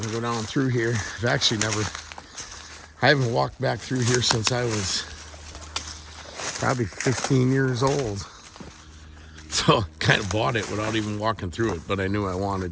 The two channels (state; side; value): identical; both; correlation 1.00